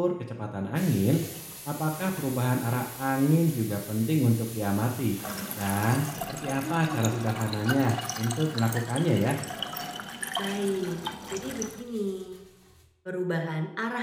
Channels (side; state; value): both; identical; correlation 1.00